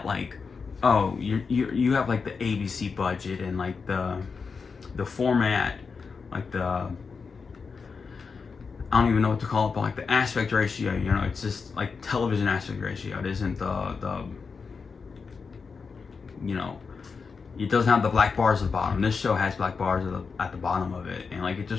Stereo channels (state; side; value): quieter; right; 5.2 dB